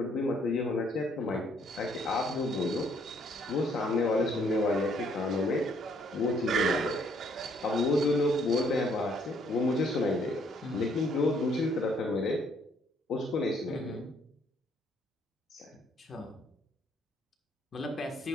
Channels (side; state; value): both; normal; correlation 0.66